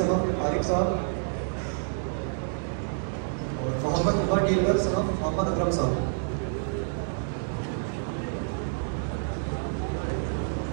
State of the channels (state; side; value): silent; left; digital silence